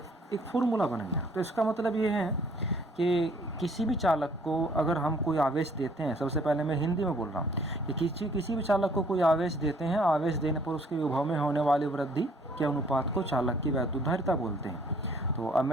फॉर्मूला बन गया। तो इसका मतलब ये है कि किसी भी चालक को अगर हम कोई आवेश देते हैं, सबसे पहले मैं हिंदी में बोल रहा हूँ कि किसी भी चालक को कोई आवेश देते हैं, आवेश देने पर उसके विभव में होने वाली वृद्धि के अनुपात को चालक की वैद्युत धारिता बोलते हैं। तो अब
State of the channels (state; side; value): normal; both; correlation 0.60